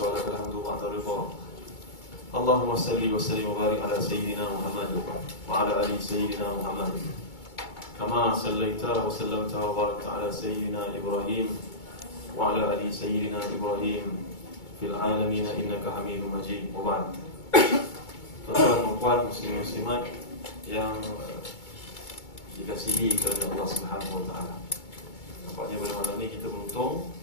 wa lakal hamdu ba'da ridha. Allahumma salli wa sallim wa barik ala sayyidina Muhammad wa ala ali sayyidina Muhammad kama sallaita wa sallamta wa barakta ala sayyidina Ibrahim wa ala ali sayyidina Ibrahim fil alamin innaka Hamidum Majid. Wa ba'd. Tuan-tuan dan puan muslimin muslimat yang dikasihi kerana Allah Subhanahu wa taala. Nampaknya pada malam ini kita beruntung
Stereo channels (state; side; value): late; right; 2.2 ms